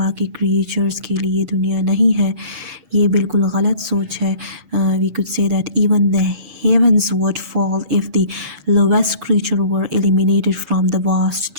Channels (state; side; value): late; left; 6.2 ms